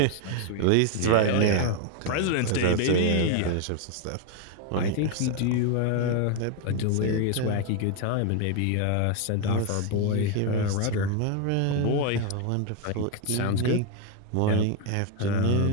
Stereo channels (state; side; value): different; both; correlation 0.01